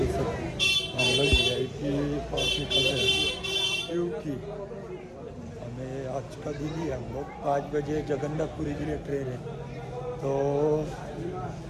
हम लोग VIP पास निकल रहे हैं क्योंकि हमें आज का दिन ही हम लोग 5 बजे जगन्नाथपुरी के लिए ट्रेन है, तो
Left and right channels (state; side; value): identical; both; correlation 1.00